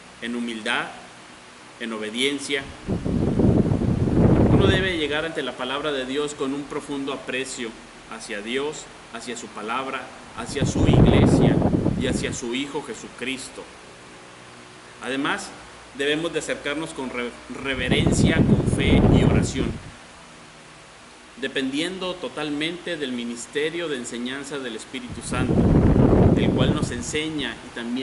en humildad, en obediencia. Uno debe llegar ante la palabra de Dios con un profundo aprecio hacia Dios, hacia su palabra, hacia su iglesia y hacia su Hijo Jesucristo. Además, debemos de acercarnos con reverencia, con fe y oración, dependiendo totalmente del ministerio de enseñanza del Espíritu Santo, el cual nos enseña y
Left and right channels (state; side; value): identical; both; correlation 1.00